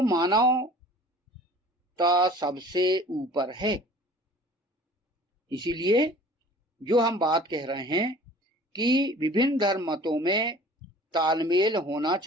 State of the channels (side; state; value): both; normal; correlation 0.47